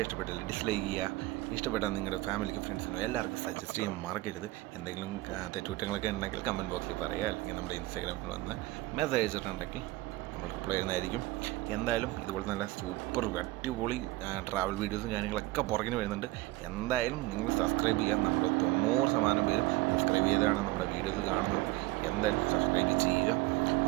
ഇഷ്ടപ്പെട്ടാൽ ഡിസ്ലൈക്ക് ചെയ്യുക, ഇഷ്ടപ്പെട്ടാൽ നിങ്ങളുടെ ഫാമിലിക്കും ഫ്രണ്ട്സിനും എല്ലാവർക്കും സജസ്റ്റ് ചെയ്യാൻ മറക്കരുത്. എന്തെങ്കിലും തെറ്റുകുറ്റങ്ങളൊക്കെ ഉണ്ടെങ്കിൽ കമൻറ്റ് ബോക്സിൽ പറയുക, അല്ലെങ്കിൽ നമ്മുടെ ഇൻസ്റ്റാഗ്രാമിൽ വന്ന് മെസ്സേജ് അയച്ചിട്ടുണ്ടെങ്കിൽ നമ്മൾ റിപ്ലൈ ചെയ്യുന്നതായിരിക്കും. എന്തായാലും ഇതുപോലെ നല്ല സൂപ്പർ അടിപൊളി ട്രാവൽ വീഡിയോസും കാര്യങ്ങളൊക്കെ പുറകിന് വരുന്നുണ്ട്. എന്തായാലും നിങ്ങൾ സബ്സ്ക്രൈബ് ചെയ്യാൻ, നമ്മുടെ 90% പേരും സബ്സ്ക്രൈബ് ചെയ്താണ് നമ്മുടെ വീഡിയോസ് കാണുന്നത്. എന്തായാലും സബ്സ്ക്രൈബ് ചെയ്യുക.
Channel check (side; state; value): left; quieter; 19.2 dB